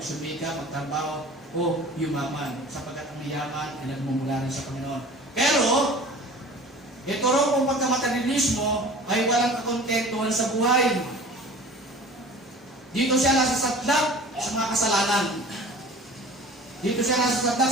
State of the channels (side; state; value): both; normal; correlation 0.43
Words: magtrabaho, o yumaman, sapagkat ang yaman ay nagmumula rin sa Panginoon. Pero, ito raw kung pagkamaterialismo ay walang kakontentuhan sa buhay. Dito siya nasasadlak sa mga kasalanan. Dito siya nasasadlak